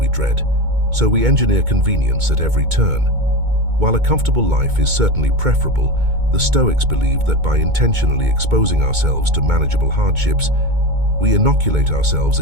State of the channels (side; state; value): left; late; 2.2 ms